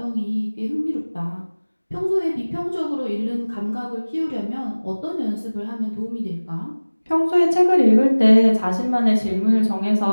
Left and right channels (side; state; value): both; inverted; correlation -1.00